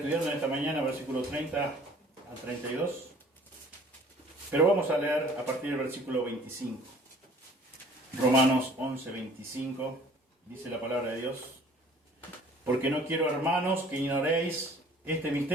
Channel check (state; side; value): normal; both; correlation 0.52